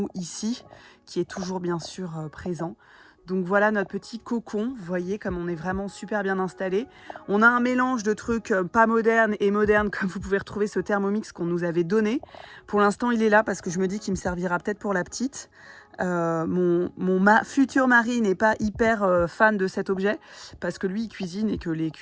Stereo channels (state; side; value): identical; both; correlation 1.00